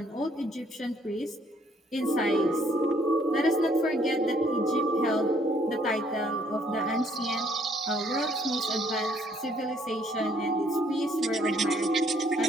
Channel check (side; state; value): both; normal; correlation 0.65